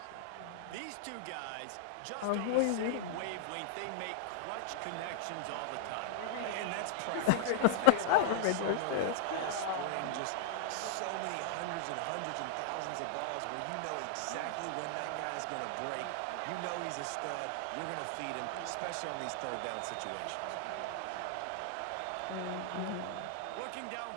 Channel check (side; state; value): both; different; correlation -0.01